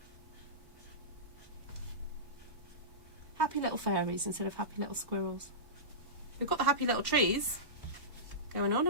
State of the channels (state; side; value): late; left; 1.1 ms